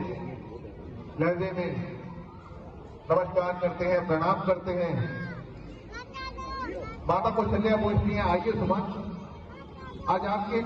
लहजे में नमस्कार करते हैं, प्रणाम करते हैं। माता कौशल्या पूछती हैं, आइए सुमन, आज आपके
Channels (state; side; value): identical; both; correlation 1.00